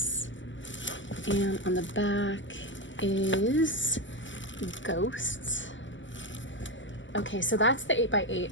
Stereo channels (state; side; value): late; right; 0.55 ms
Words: and on the back is ghosts. Okay, so that's the 8x8.